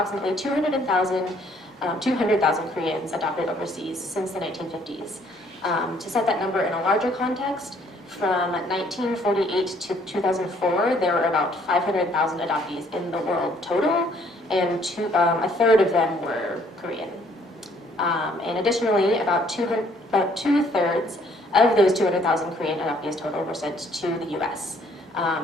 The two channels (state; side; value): normal; both; correlation 0.63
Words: 200,000 Koreans adopted overseas since the 1950s. To set that number in a larger context, from 1948 to 2004, there were about 500,000 adoptees in the world total, and a third of them were Korean. And additionally, about two-thirds of those 200,000 Korean adoptees total were sent to the US.